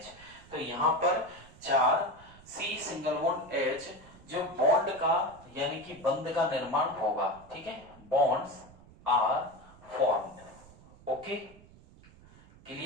तो यहां पर 4 C सिंगल बॉन्ड H जो बॉन्ड का यानी कि बंध का निर्माण होगा। ठीक है, bonds are formed. Okay,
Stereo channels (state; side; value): noise; right; rumble, 23 dB below the sound